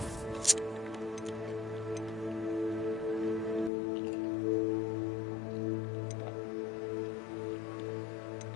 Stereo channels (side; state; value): right; drops out; at 3.7 s